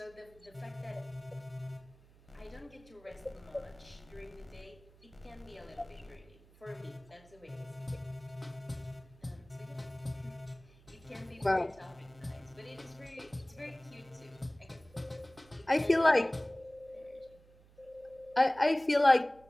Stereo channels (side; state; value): right; noise; hum, 25 dB below the sound